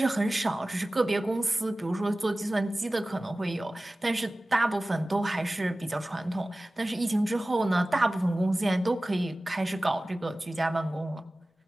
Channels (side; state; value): both; normal; correlation 0.97